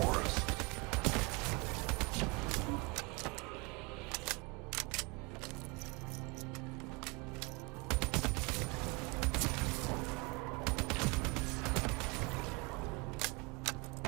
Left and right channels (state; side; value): quieter; left; 28.7 dB